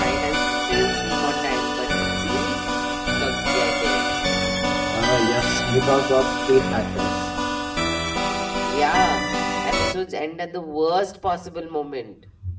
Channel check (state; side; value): identical; both; correlation 1.00